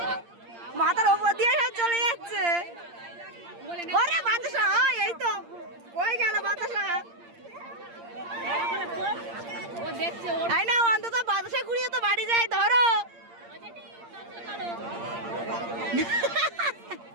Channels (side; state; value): left; late; 8.7 ms